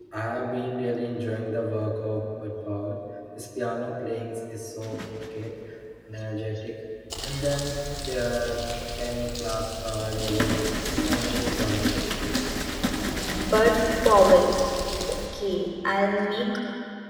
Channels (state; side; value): identical; both; correlation 1.00